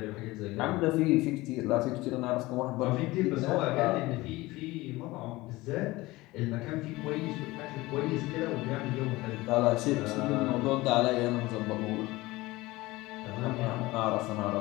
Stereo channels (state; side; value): quieter; right; 20.1 dB